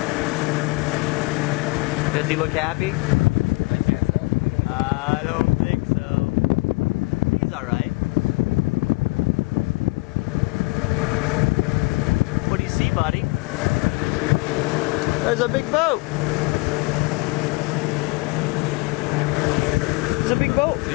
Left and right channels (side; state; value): right; quieter; 26.0 dB